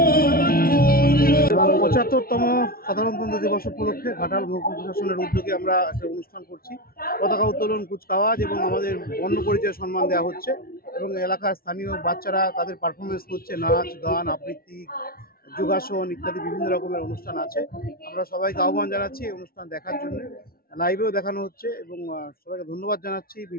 এবং ৭৫তম সাধারণতন্ত্র দিবস উপলক্ষে ঘাটাল মহকুমা প্রশাসনের উদ্যোগে আমরা একটা অনুষ্ঠান করছি। পতাকা উত্তোলন, কুচকাওয়াজ এবং আমাদের বর্ণ পরিচয় সম্মান দেওয়া হচ্ছে এবং এলাকার স্থানীয় বাচ্চারা তাদের পারফরমেন্স করছে, নাচ গান আবৃত্তি যোগাসন ইত্যাদি বিভিন্ন রকমের অনুষ্ঠান আছে। আমরা সবাইকে আহ্বান জানাচ্ছি এই অনুষ্ঠান দেখার জন্য। লাইভেও দেখানো হচ্ছে এবং সবাইকে ধন্যবাদ জানাচ্ছি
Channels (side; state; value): right; late; 0.43 ms